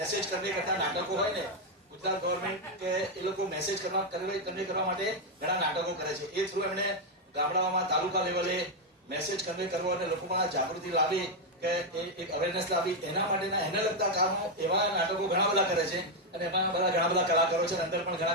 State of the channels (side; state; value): both; normal; correlation 0.02